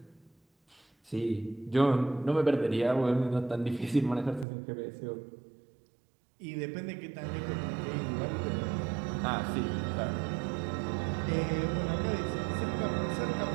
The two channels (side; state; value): left; drops out; at 4.5 s